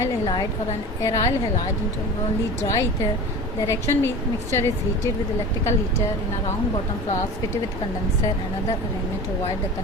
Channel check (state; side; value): normal; both; correlation 0.34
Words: halide or an aryl halide into only dry ether. The reaction mixture is heated with electrical heater in a round bottom flask fitted with condenser and other arrangement to avoid the